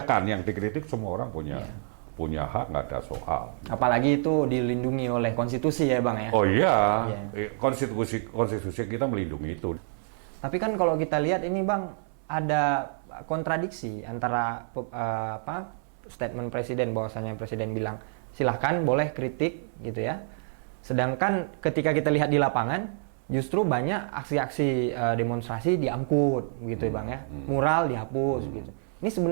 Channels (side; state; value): left; silent; 59 dB below the other